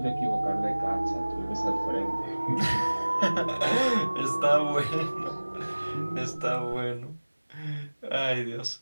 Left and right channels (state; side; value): inverted; both; correlation -1.00